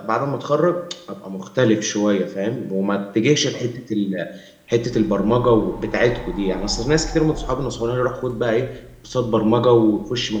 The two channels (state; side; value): identical; both; correlation 1.00